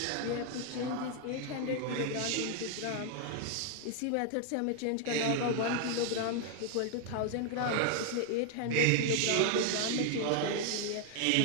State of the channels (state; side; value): different; both; correlation 0.00